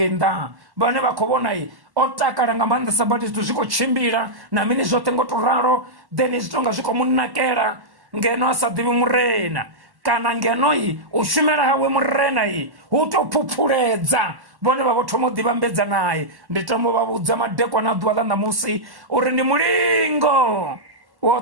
nnḓa, vhane vha khou vhona o takala nga maanḓesa badi zwithu zwi khou tshimbila na mini zwoṱhe ngo to ralo, then zwi tonga zwi khou mu nakela ngeno a sa ḓivhi murena, kana ngeno u shumela hawe murena hu tou phuphuledza, vhone vha vho thoma u ḓivhambedza naye. Ndi tama u vha vhudza madekwana a ḓuvha ḽa ṋamusi uri ndi mulingo wo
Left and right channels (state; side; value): late; left; 1.1 ms